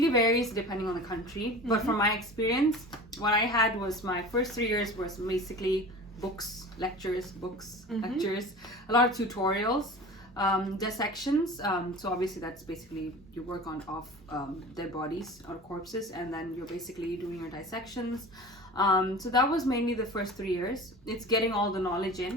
varies depending on the country. But from my experience, what I had was my first 3 years was basically books, lectures, lectures, a lot of tutorials, dissections. So obviously that's basically you work off dead bodies or corpses, and then you're basically doing your dissections. So that was mainly the first 3 years. It's getting all the knowledge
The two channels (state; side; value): normal; both; correlation 0.37